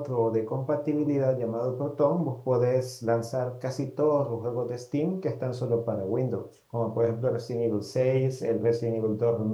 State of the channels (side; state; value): both; identical; correlation 1.00